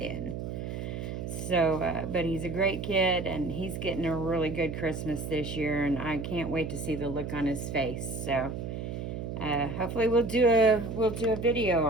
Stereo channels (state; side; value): noise; right; hum, 5 dB below the sound